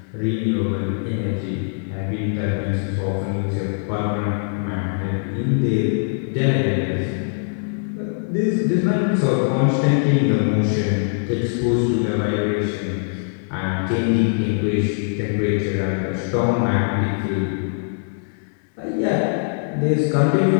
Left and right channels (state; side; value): silent; right; digital silence